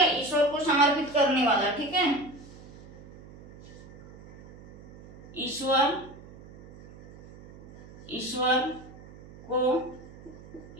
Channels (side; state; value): right; noise; hum, 20 dB below the sound